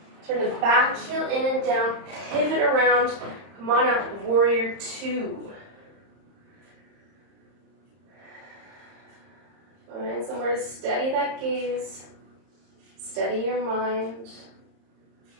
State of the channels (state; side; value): late; left; 30 ms